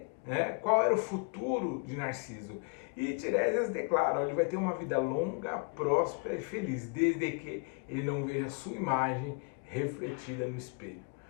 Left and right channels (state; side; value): quieter; right; 35.9 dB